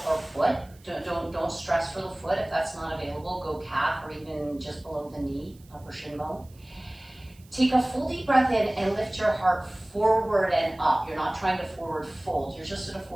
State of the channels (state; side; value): noise; right; hiss, 28 dB below the sound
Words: or foot. Don't stress for the foot. If that's not available, go calf or even just below the knee, upper shin bone. Take a full deep breath in and lift your heart forward and up. You're not trying to forward fold. You're just at a